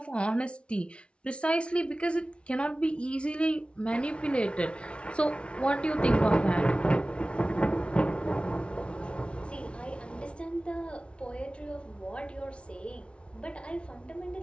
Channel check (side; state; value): right; late; 0.059 ms